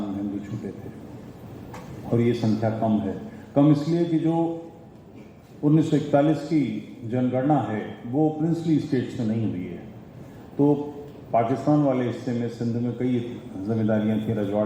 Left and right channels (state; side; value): identical; both; correlation 1.00